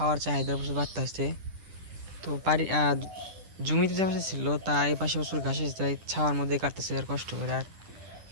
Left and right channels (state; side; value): late; left; 10 ms